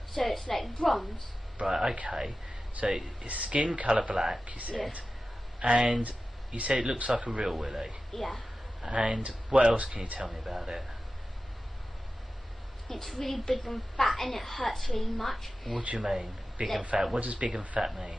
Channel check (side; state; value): both; normal; correlation 0.94